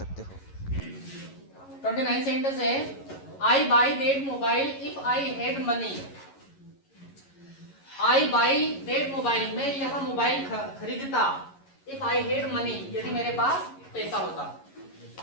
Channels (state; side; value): late; right; 11 ms